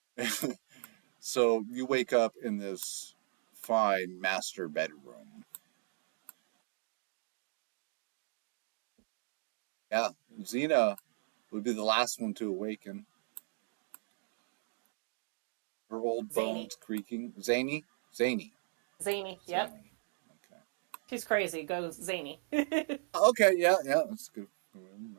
So you wake up in this fine master bedroom. Yeah, Xena would be the last one to awaken. Her old Zany. bones creaking. Zany? Zany. Zany. Yep. Zany. Okay. She's crazy. Goes zany. Okay, yeah, yeah, that's good. I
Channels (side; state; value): left; silent; digital silence